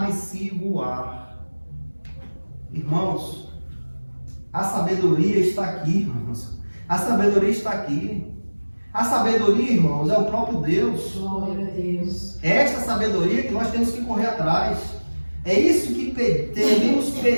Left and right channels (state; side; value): inverted; both; correlation -1.00